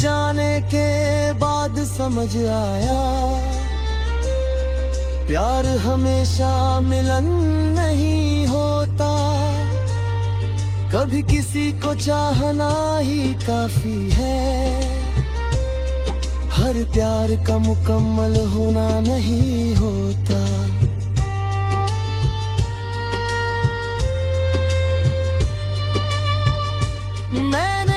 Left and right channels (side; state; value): both; identical; correlation 1.00